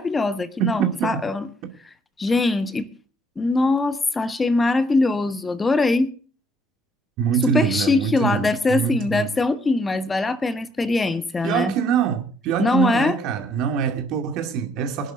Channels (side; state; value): both; normal; correlation 0.68